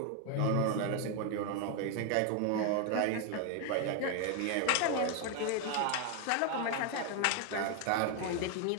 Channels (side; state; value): both; different; correlation 0.01